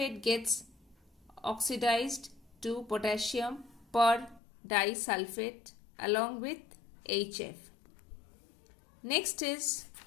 gets oxidized to potassium per-disulfate along with HF. Next is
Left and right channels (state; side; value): drops out; right; at 4.4 s